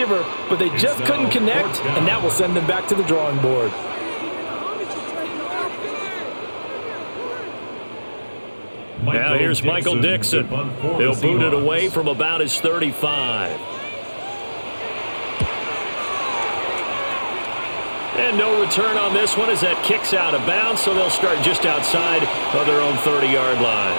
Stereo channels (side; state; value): both; inverted; correlation -1.00